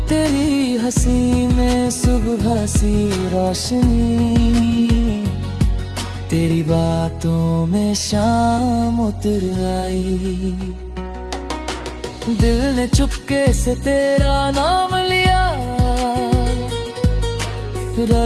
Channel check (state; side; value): identical; both; correlation 1.00